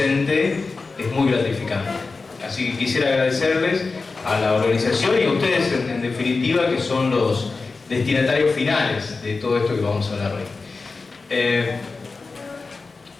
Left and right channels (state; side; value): quieter; right; 4.1 dB